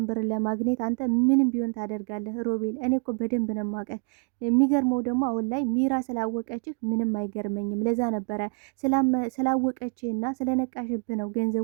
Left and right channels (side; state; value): left; quieter; 38.7 dB